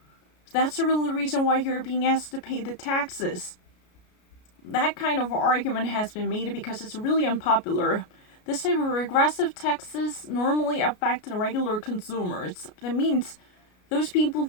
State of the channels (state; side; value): late; right; 33 ms